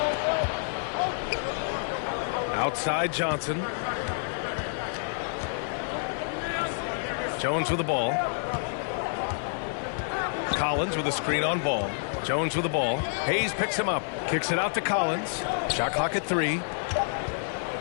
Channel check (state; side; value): silent; right; digital silence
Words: Outside Johnson. Jones with the ball. Collins with a screen on Ball. Jones with the ball. Hayes picks him up. Kicks it out to Collins. Shot clock at 3. He